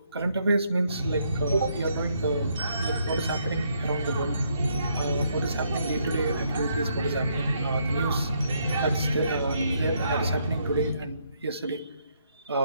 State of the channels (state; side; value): inverted; both; correlation -0.73